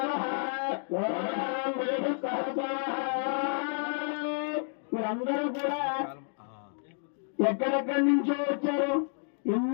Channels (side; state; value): right; silent; 58 dB below the other